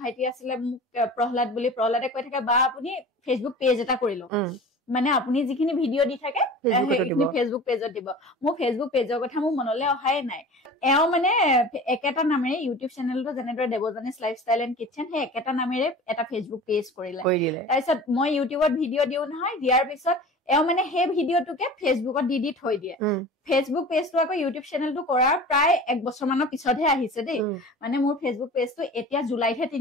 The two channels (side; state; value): both; normal; correlation 0.38